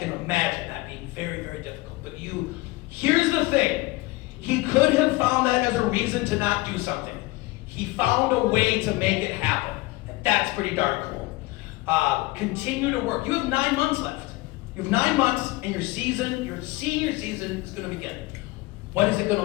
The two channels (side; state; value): right; quieter; 21.1 dB